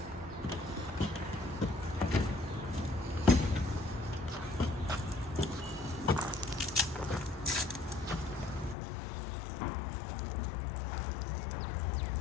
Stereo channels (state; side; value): drops out; right; at 8.8 s